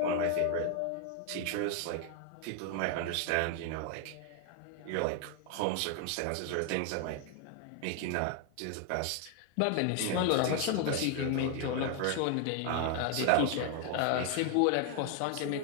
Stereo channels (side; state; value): both; different; correlation 0.00